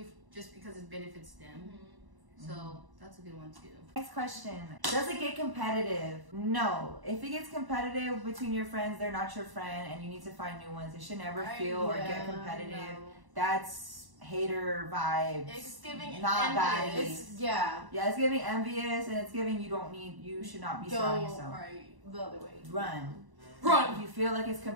just because it benefits them. So that's a good one too. Next question. Does it get competitive? No. If it gets competitive between your friends, they're not your friend and you need to find new ones. It should never feel or get competitive. No. That's hater vibes. It's giving not envious. bad. Yeah, it's giving envious and it's giving you should not be surrounding yourself. Right, the other way. Run. Run. If you feel like it's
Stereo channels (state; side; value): late; left; 1.0 ms